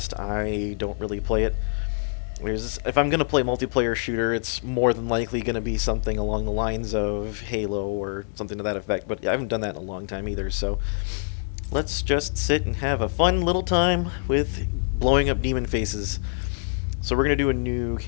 I don't really play it. If I'm going to play multiplayer shooter, it's more than likely going to be something along the lines of Halo or something to that effect, but I haven't done that in a long time either, so let's just sit and have a fun little time with blowing up demon faces. So we're going to do a new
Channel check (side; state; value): right; silent; digital silence